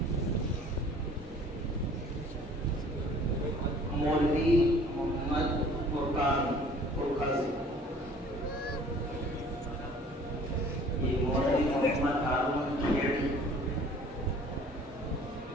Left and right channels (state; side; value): normal; both; correlation 0.51